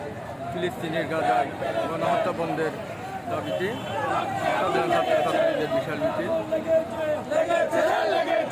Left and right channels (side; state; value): both; identical; correlation 1.00